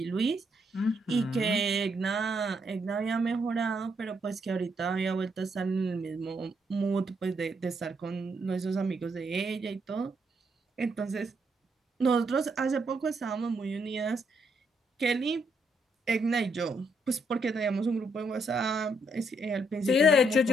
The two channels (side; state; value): both; normal; correlation 0.75